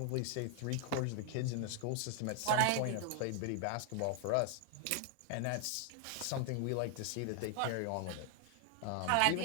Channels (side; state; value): both; different; correlation 0.00